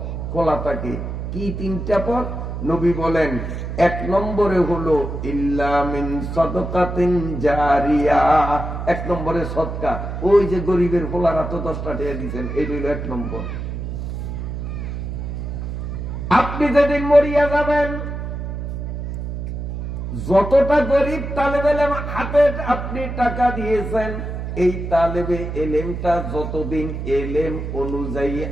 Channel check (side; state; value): right; noise; hum, 5 dB below the sound